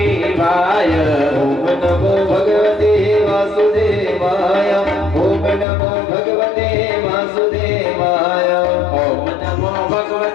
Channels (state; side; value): drops out; right; at 5.7 s